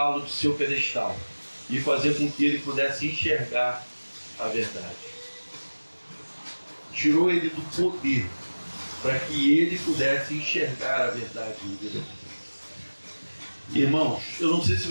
do seu pedestal e fazer com que ele pudesse enxergar a verdade. Tirou ele do poder para que ele pudesse enxergar a verdade de Deus. Irmãos, eu não sei se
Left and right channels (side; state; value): both; inverted; correlation -1.00